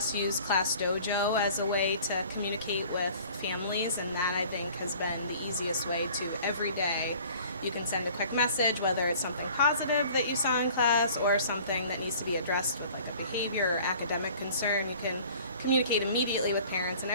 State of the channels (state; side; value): inverted; both; correlation -0.49